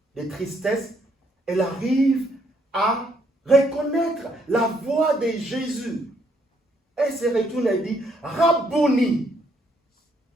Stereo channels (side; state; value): both; normal; correlation 0.71